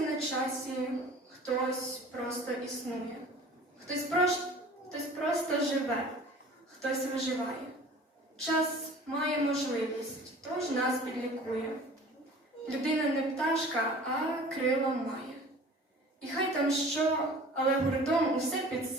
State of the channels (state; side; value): normal; both; correlation 0.45